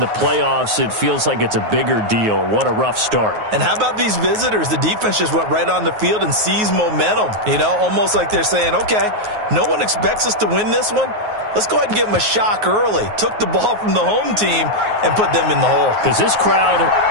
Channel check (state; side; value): late; left; 9.4 ms